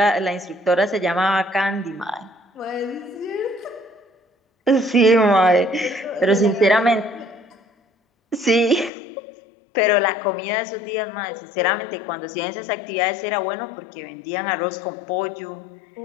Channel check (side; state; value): right; drops out; at 8.9 s